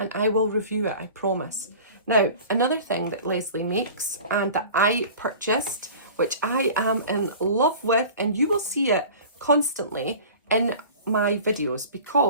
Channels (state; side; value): inverted; both; correlation -0.40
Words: I will review it, I promise. Now, another thing that Leslie makes and that I purchased, which I am in love with, and you will see it constantly in my videos